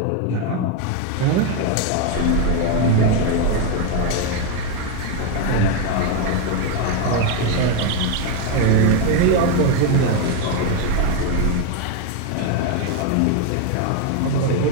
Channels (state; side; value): different; both; correlation 0.02